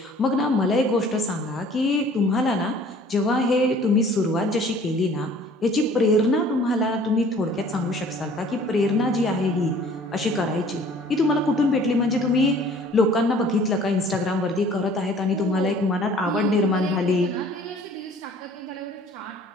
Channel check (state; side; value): normal; both; correlation 0.52